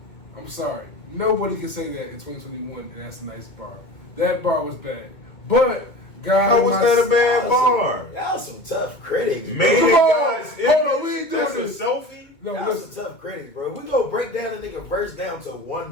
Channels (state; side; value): late; right; 2.0 ms